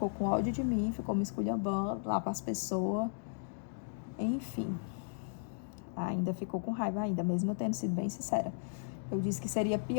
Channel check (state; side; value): silent; right; digital silence